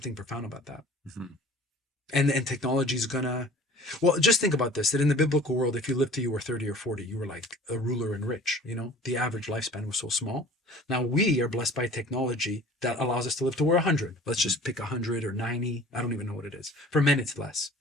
profound about that. And technology is gonna, well, just think about this, that in the biblical world, if you lived till you were 30 or 40, you were like a ruler and rich, you know, the average lifespan was so small. Now we are blessed by technology that allows us to live to we're 100. Let's just pick 100 or 90. I don't even know what it is. For men, it's less,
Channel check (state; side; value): normal; both; correlation 0.46